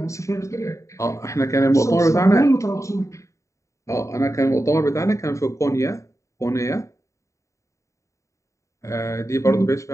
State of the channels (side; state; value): right; late; 0.15 ms